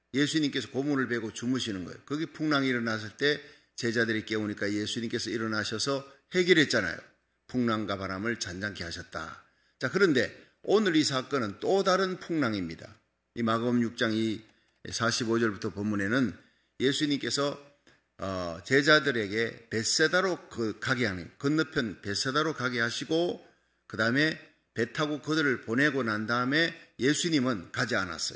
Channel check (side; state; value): both; identical; correlation 1.00